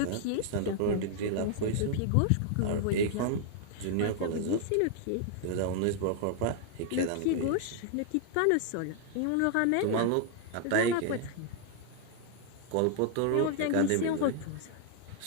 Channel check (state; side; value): different; both; correlation 0.00